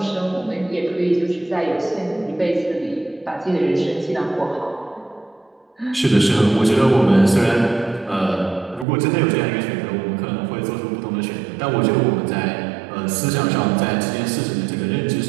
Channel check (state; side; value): drops out; left; at 8.8 s